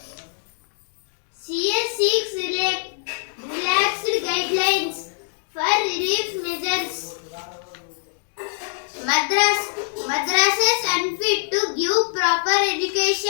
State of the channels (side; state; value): right; silent; digital silence